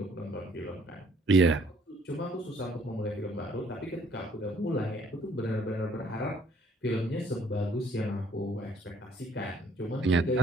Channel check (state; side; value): normal; both; correlation 0.63